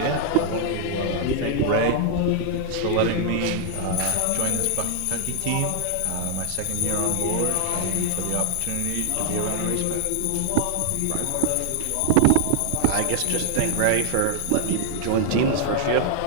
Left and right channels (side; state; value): both; different; correlation -0.01